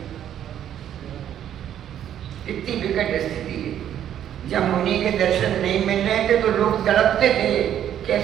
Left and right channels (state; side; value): quieter; left; 10.4 dB